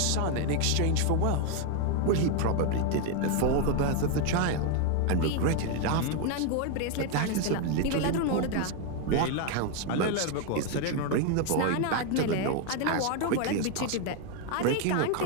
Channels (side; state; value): both; different; correlation 0.01